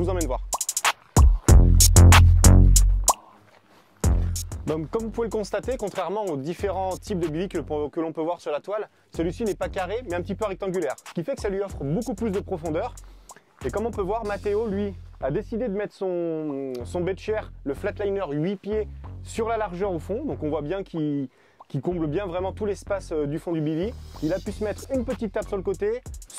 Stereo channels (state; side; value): identical; both; correlation 1.00